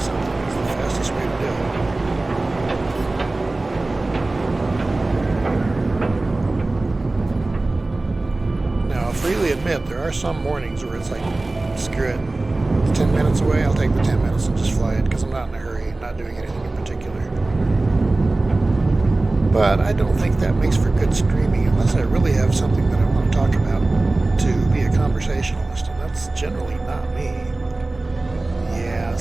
is the fastest way to do it. Freely admit there are some mornings where it's like, screw it, it's 10 minutes away, I'll take the 10 minutes and just fly it because I'm not in a hurry, I'm not doing anything in particular. But I don't think that makes for good streaming unless I really have something that I want to talk about to be a conversationalist, and that's generally not me. Yeah, this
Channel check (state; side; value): quieter; left; 3.0 dB